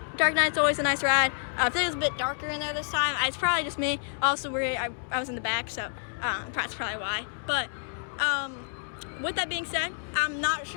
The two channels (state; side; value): silent; right; digital silence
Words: Dark Knight's always a nice ride. I think it was a bit darker in there this time. It's probably just me. Also, I was in the back, so that's probably why. But with that being said, I'm not